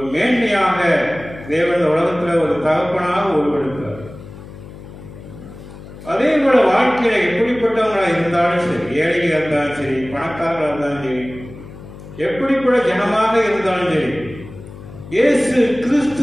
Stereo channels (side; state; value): left; noise; hum, 16 dB below the sound